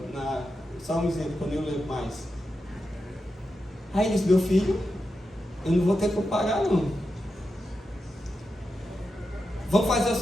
Só um exemplo, quando eu lembro mais. Aí ele disse, meu filho, eu não vou ter como pagar não. Vamos fazer o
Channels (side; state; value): both; normal; correlation 0.89